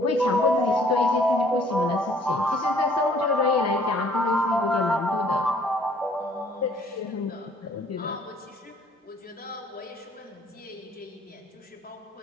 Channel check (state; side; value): normal; both; correlation 0.59